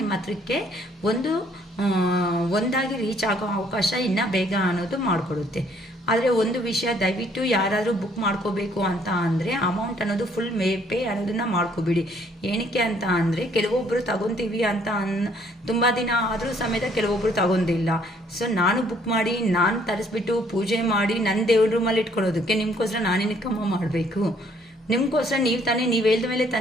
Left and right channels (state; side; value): normal; both; correlation 0.64